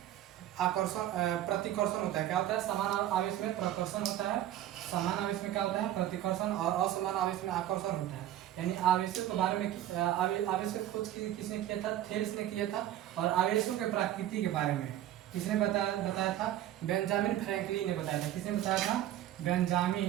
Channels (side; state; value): left; quieter; 12.7 dB